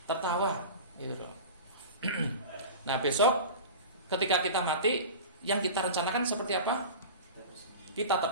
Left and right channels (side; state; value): both; inverted; correlation -0.33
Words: tertawa, gitu loh. Nah, besok ketika kita mati, yang kita rencanakan seperti apa? Kita